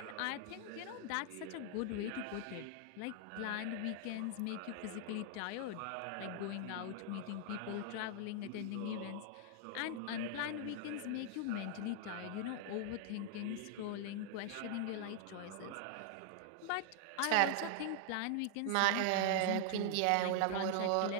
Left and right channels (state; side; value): different; both; correlation 0.00